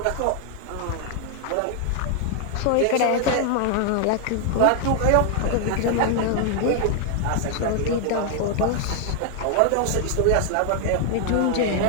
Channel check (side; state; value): both; different; correlation 0.00